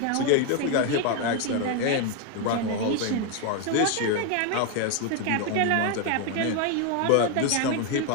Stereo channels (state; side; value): different; both; correlation 0.01